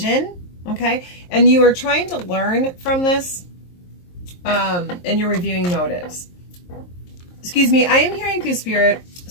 okay? And you are trying to learn from this, and you're reviewing motives. Excuse me, I am hearing through Spirit,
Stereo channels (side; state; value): right; late; 23 ms